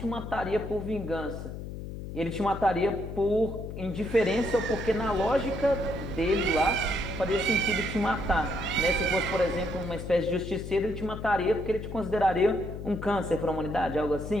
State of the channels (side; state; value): left; noise; hum, 8 dB below the sound